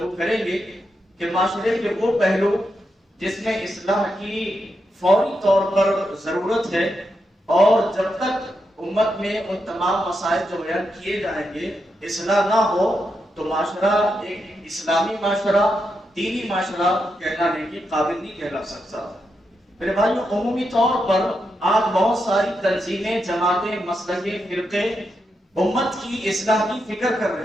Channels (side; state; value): both; normal; correlation 0.84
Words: کریں گے کہ معاشرے کے وہ پہلو جس میں اصلاح کی فوری طور پر ضرورت ہے، اور جب تک امت میں ان تمام مسائل جو بیان کیے جائیں گے اصلاح نہ ہو تو معاشرہ ایک اسلامی معاشرہ، دینی معاشرہ کہلانے کے قابل نہیں کہلا سکتا. میرے بھائیوں، عمومی طور پر آج بہت ساری تنظیمیں، جماعتیں، مسلکیں، فرقے امت کی اصلاح کی فکر کر رہے